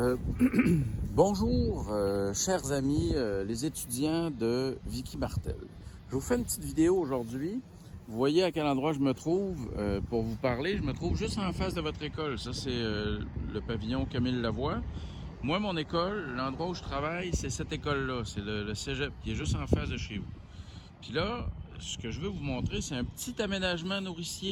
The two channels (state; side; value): identical; both; correlation 1.00